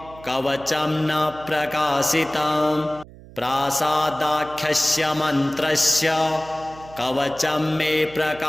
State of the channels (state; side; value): noise; right; hum, 20 dB below the sound